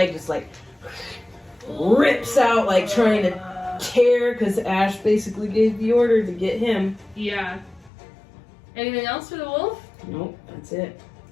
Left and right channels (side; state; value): right; drops out; at 7.9 s